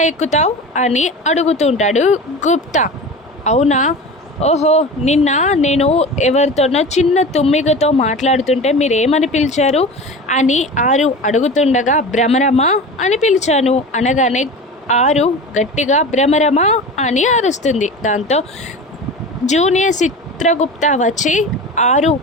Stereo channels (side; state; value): both; normal; correlation 0.32